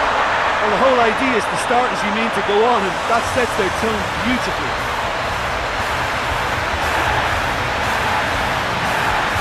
Well, the whole idea is to start as you mean to go on, and that sets their tone beautifully.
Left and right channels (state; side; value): identical; both; correlation 1.00